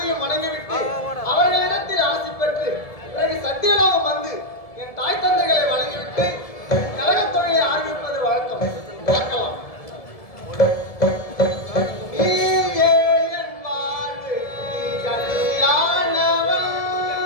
வணங்கிவிட்டு அவர்களிடத்தில் ஆசி பெற்று பிறகு சத்தியலோகம் வந்து என் தாய் தந்தைகளை வணங்கிவிட்டு கழகத் தொழிலை ஆரம்பிப்பது வழக்கம். பார்க்கலாம்.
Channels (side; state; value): right; late; 1.7 ms